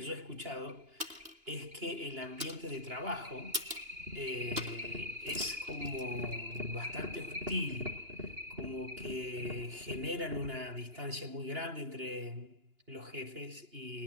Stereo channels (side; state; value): left; late; 2.9 ms